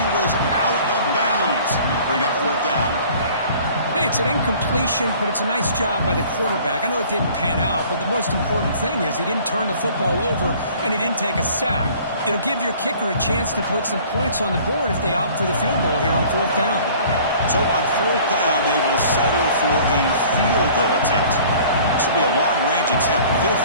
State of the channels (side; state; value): both; inverted; correlation -0.50